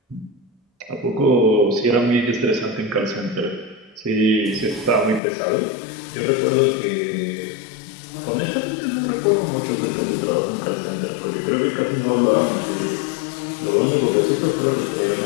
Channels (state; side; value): drops out; right; at 5.2 s